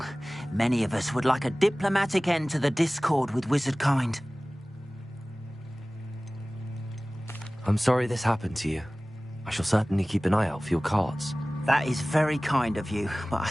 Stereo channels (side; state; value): both; normal; correlation 0.98